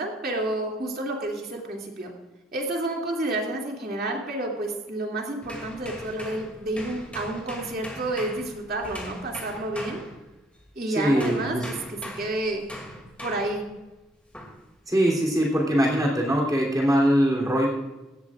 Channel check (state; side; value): normal; both; correlation 0.69